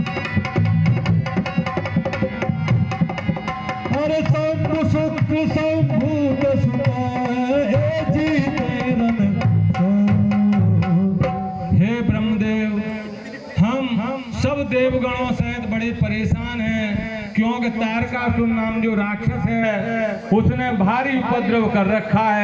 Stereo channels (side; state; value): both; identical; correlation 1.00